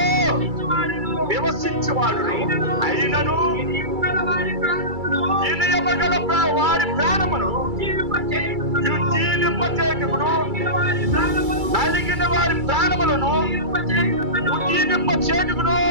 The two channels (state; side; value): late; left; 2.3 ms